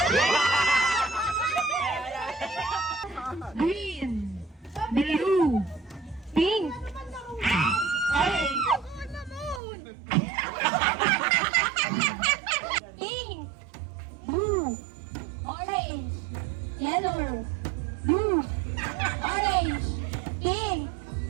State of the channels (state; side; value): drops out; left; at 9.6 s